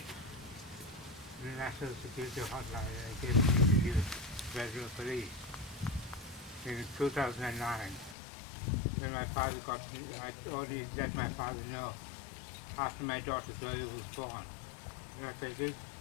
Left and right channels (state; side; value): drops out; right; at 8.2 s